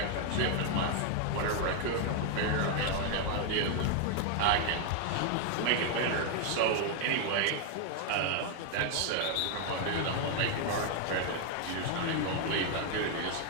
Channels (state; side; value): different; both; correlation 0.00